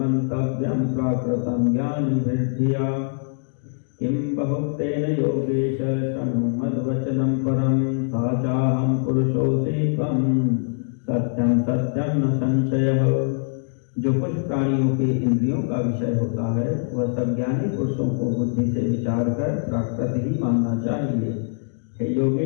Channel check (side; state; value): right; silent; digital silence